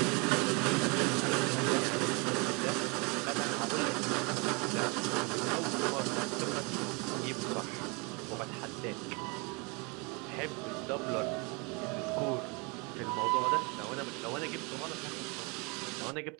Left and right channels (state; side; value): quieter; left; 30.0 dB